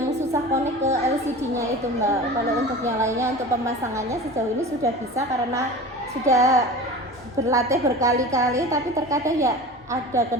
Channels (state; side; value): normal; both; correlation 0.35